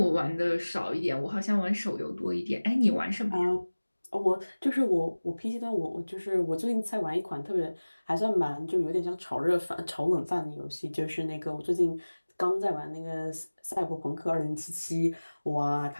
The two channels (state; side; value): inverted; both; correlation -1.00